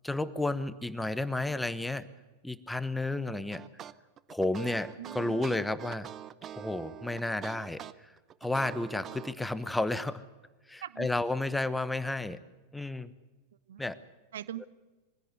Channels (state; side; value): normal; both; correlation 0.88